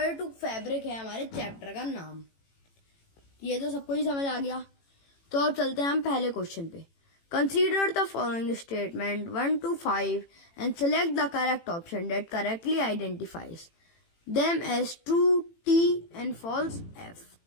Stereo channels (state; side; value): late; right; 18 ms